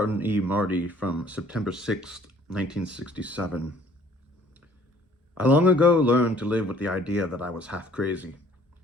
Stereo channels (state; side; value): normal; both; correlation 0.57